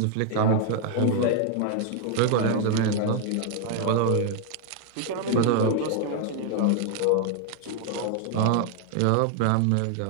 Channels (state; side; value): different; both; correlation 0.00